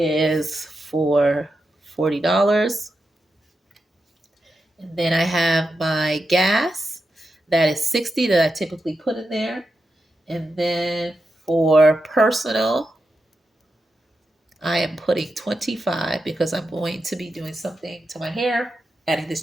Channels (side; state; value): both; normal; correlation 0.88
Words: for $40. And then I have my gas, that is 60 that I typically put in there. And then for personal, I am putting 25 because I'm going to be doing something to my hair, adding